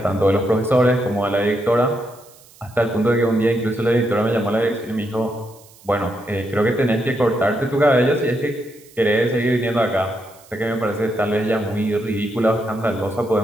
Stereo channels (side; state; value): right; noise; hiss, 25 dB below the sound